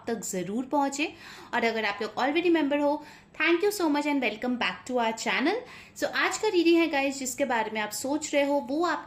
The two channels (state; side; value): identical; both; correlation 1.00